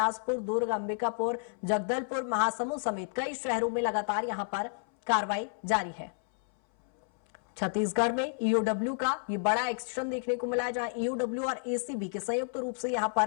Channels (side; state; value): right; silent; 57 dB below the other